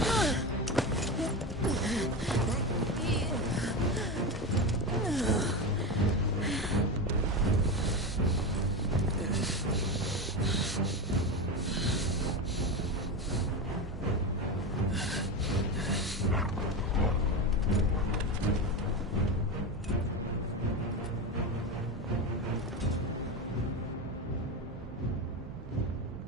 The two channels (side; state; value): both; normal; correlation 0.18